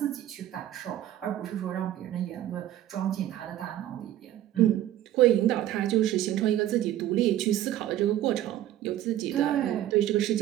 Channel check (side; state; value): left; quieter; 12.8 dB